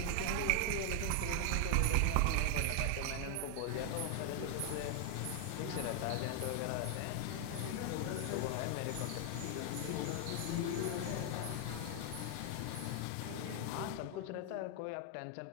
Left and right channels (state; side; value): different; both; correlation 0.00